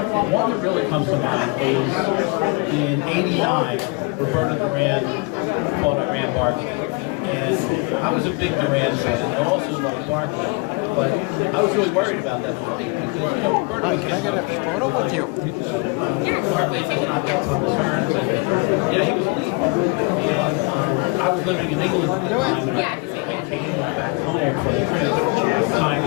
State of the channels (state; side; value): quieter; right; 29.3 dB